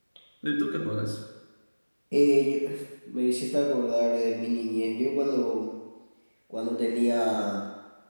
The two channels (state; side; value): inverted; both; correlation -1.00